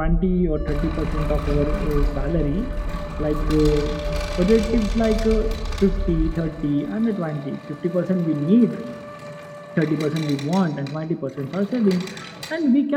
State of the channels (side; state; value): both; identical; correlation 1.00